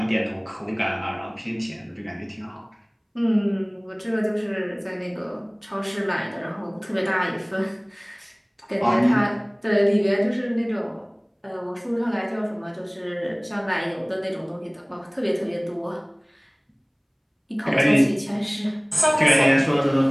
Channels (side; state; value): both; identical; correlation 1.00